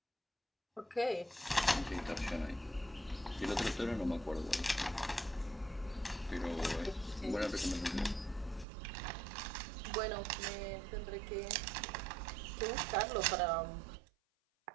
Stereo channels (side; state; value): left; drops out; at 8.7 s